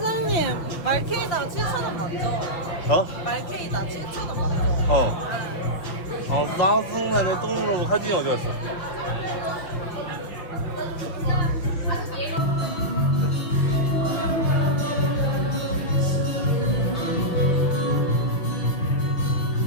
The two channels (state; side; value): late; right; 6.2 ms